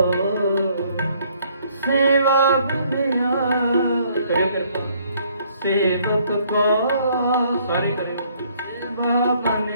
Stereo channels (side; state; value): both; inverted; correlation -0.64